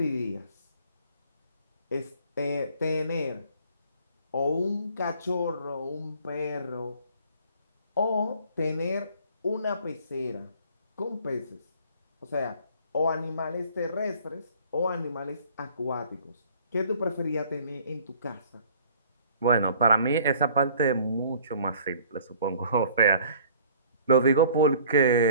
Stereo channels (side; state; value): both; inverted; correlation -0.53